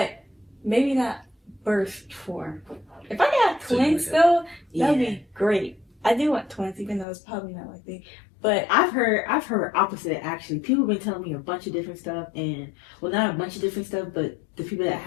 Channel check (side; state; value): right; drops out; at 7.1 s